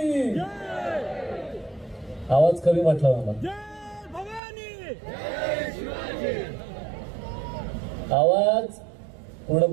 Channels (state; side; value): drops out; left; at 4.4 s